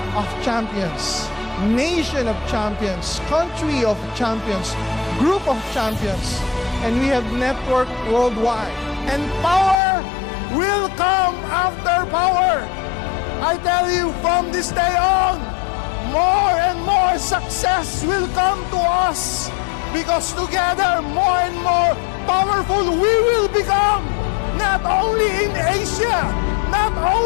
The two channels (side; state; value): right; drops out; at 9.8 s